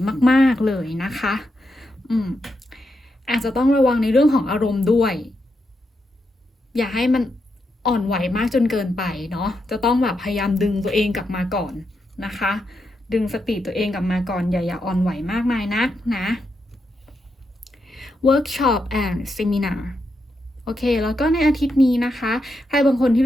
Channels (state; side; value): normal; both; correlation 0.84